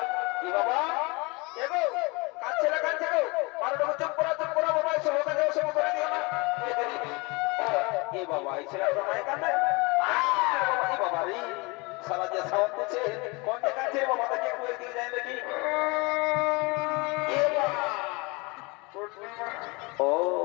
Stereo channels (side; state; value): right; quieter; 26.9 dB